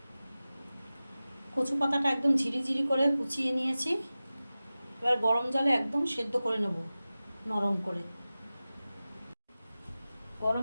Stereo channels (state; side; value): inverted; both; correlation -0.96